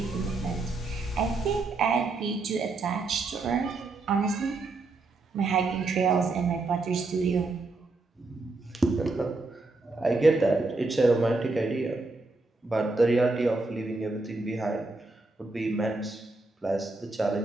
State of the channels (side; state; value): left; quieter; 3.4 dB